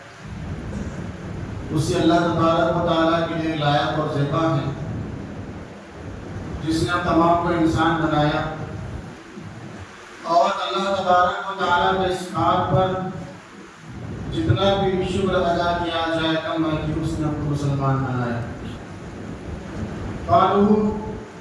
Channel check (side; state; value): both; identical; correlation 1.00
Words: اسی اللہ تبارک و تعالیٰ کے لیے لائق اور زیبا ہے جس نے ہم تمام کو انسان بنایا اور اللہ تبارک و تعالیٰ کے اس بات پر جتنا بھی شکر ادا کیا جائے کم ہے کہ اس نے ہم کو مسلمان بنایا قالو